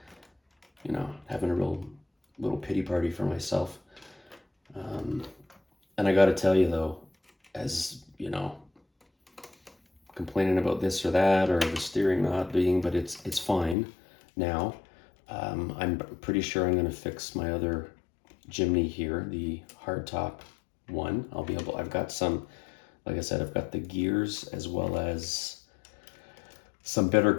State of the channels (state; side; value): drops out; right; at 13.8 s